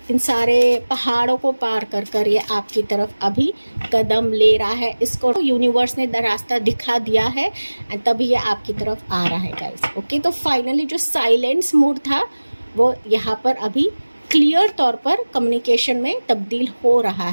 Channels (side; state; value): both; inverted; correlation -1.00